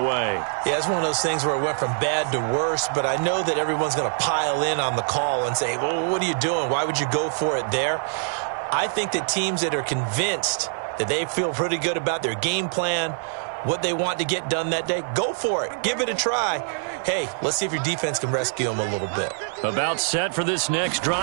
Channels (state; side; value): silent; left; 62 dB below the other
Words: Yeah, it's one of those things where it went from bad to worse, but I know that everyone's going to pile in on the call and say, well, what are you doing? Why would you go for it there? I think that teams that are convinced that they feel pretty good about their game plan, what they want to get done that day, go for it. Give it a try. Hey, let's see if your defense can rescue them a little bit. About set for this next